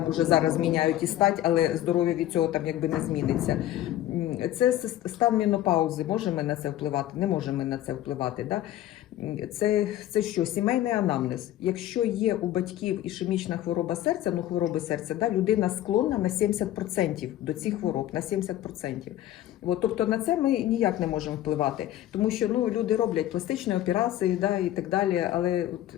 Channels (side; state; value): right; quieter; 13.3 dB